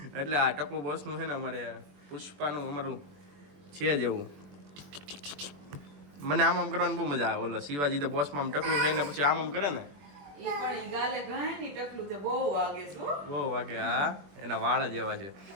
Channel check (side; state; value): left; late; 21 ms